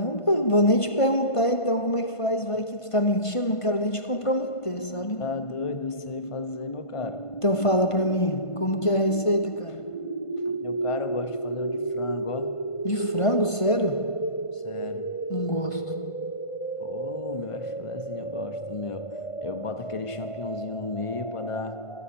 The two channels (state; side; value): late; right; 1.5 ms